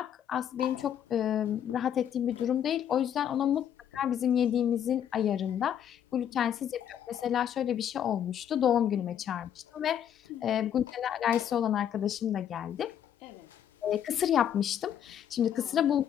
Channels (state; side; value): quieter; right; 9.6 dB